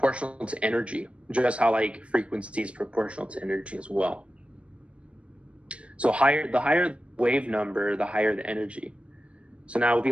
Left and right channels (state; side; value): late; left; 0.060 ms